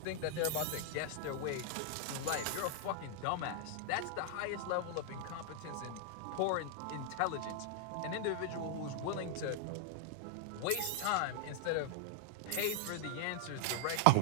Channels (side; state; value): both; different; correlation 0.00